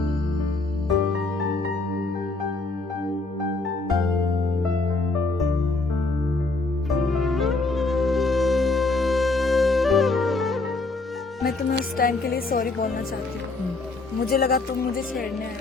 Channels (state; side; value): quieter; right; 3.4 dB